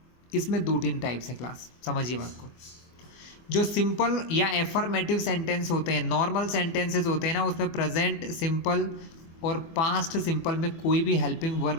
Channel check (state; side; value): late; right; 24 ms